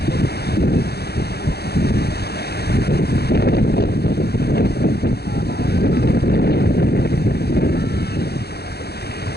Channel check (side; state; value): right; late; 0.47 ms